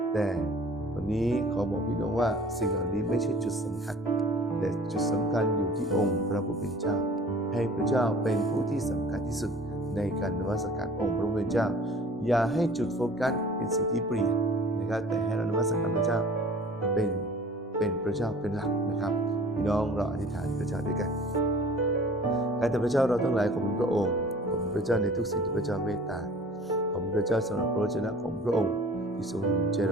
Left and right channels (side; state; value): both; normal; correlation 0.47